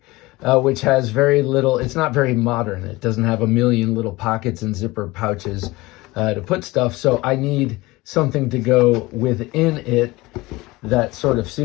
which has very little. It's not very modern. It doesn't have a million little pockets and zipper pouches to put stuff. So I need something to go within it that sort of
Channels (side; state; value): right; quieter; 20.9 dB